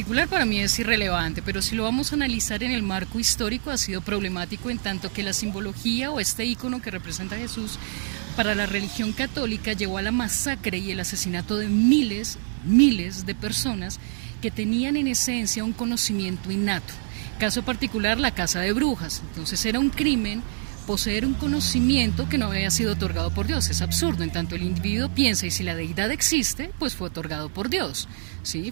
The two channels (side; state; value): left; silent; digital silence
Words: para mí es irrelevante, pero si lo vamos a analizar en el marco histórico ha sido problemático, en tanto que la simbología o este ícono que representa a Jesús para la religión católica llevó a la masacre y el asesinato de miles de personas que tenían en esencia un conocimiento innato. Caso particular, la caza de brujas. Entonces era un crimen poseer un conocimiento que no había sido otorgado por Dios. Es absurdo, en tanto el individuo piensa, y si la deidad existe, pues fue otorgado por Dios. ¿Sí?